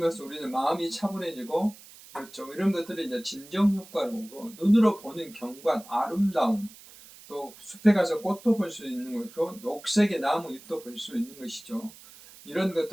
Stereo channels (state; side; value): noise; right; hiss, 20 dB below the sound